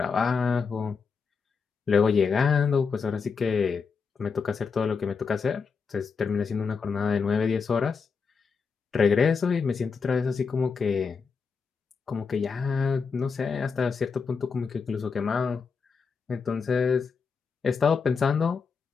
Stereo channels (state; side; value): quieter; right; 5.5 dB